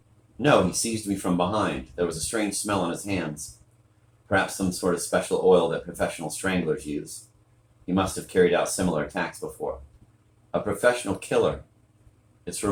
No, he seized me from behind. There was a strange smell on his hands. Perhaps some sort of special oil that professional stranglers use. He must have carried out similar attacks before. A professional killer. It's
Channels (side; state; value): both; identical; correlation 1.00